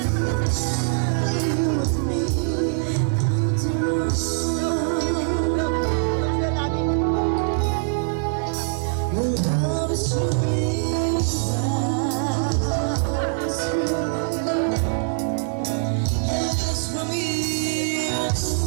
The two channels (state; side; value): silent; left; digital silence